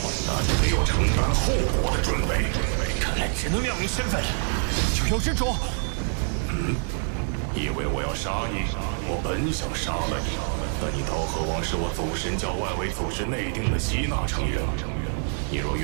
那你没有承担后果的准备。看来只能亮明身份了。九幽之主，以为我要杀你？我本想杀了你，但你刀河王是我祖神教外围组织内定的吸纳成员。你若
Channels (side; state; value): left; silent; 61 dB below the other